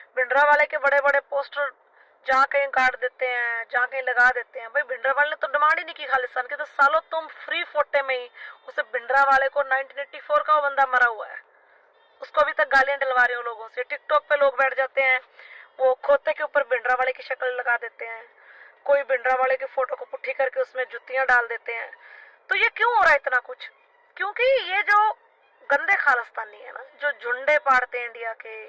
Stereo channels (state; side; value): identical; both; correlation 1.00